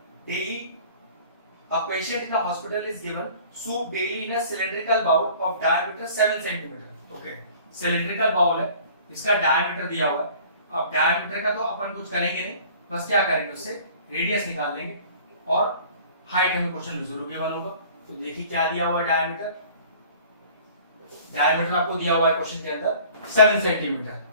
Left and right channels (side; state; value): both; inverted; correlation -0.48